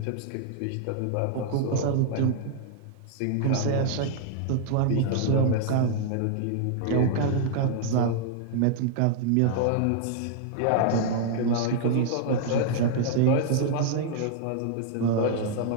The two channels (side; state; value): both; different; correlation -0.01